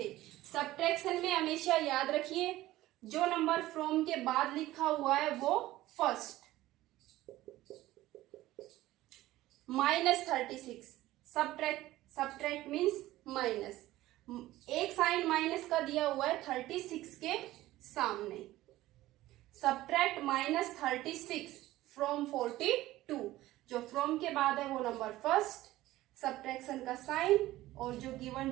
सब्ट्रैक्शन में हमेशा याद रखिए जो नंबर फ्रॉम के बाद लिखा हुआ है वो फर्स्ट। -36 सब्ट्रैक्ट मीन्स माइनस, एक साइन माइनस का दिया हुआ है 36 के सामने। सब्ट्रैक्ट -36 फ्रॉम 42, जो फ्रॉम के बाद है वो नंबर फर्स्ट, सब्ट्रैक्शन का साइन, और जो गिवन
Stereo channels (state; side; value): quieter; left; 16.2 dB